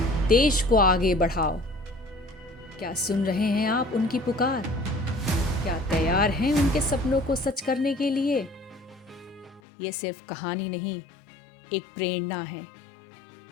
देश को आगे बढ़ाओ। क्या सुन रहे हैं आप उनकी पुकार? क्या तैयार हैं उनके सपनों को सच करने के लिए? ये सिर्फ कहानी नहीं, एक प्रेरणा है।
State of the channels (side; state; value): right; drops out; at 9.6 s